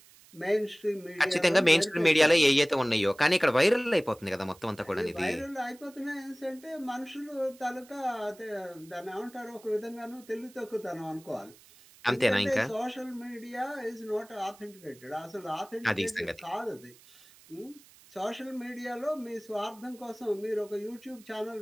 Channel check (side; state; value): right; noise; hiss, 25 dB below the sound